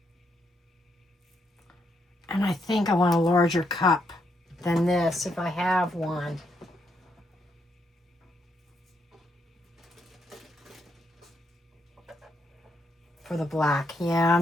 And I think I want a larger cup than this if I have one. For the black. Yeah,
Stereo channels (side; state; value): both; normal; correlation 0.77